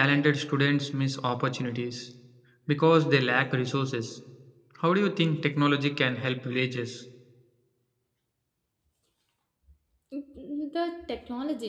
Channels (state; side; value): identical; both; correlation 1.00